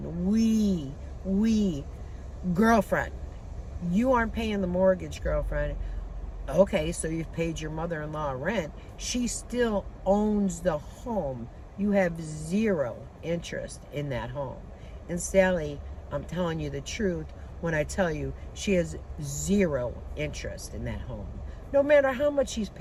We, girlfriend. You aren't paying the mortgage, girlfriend. Okay, so you've paid your mother-in-law rent. She still owns the home. You have zero interest in that home. And Sally, I'm telling you the truth when I tell you she has zero interest in that home. No matter how much she's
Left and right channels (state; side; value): identical; both; correlation 1.00